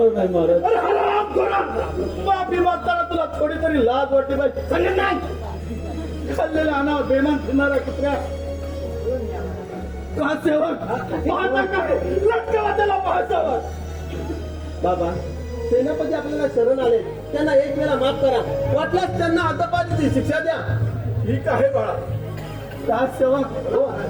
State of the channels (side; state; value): both; identical; correlation 1.00